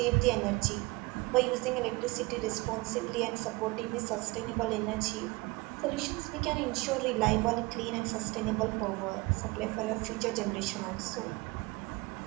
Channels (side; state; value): left; quieter; 23.6 dB